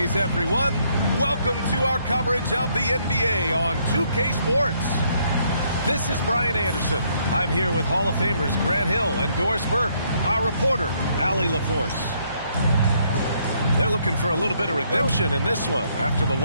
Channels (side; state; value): both; inverted; correlation -0.70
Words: everyone. Welcome to our coverage of the NBA on 2K Sports. This is Brian Anderson. I'm here with Hall of Famers Grant Hill and Doris Burke, our reporter, Allie LaForce. They're looking for a little bit of redemption in this one after the